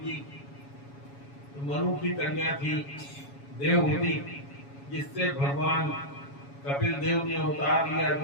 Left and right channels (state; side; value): late; right; 7.2 ms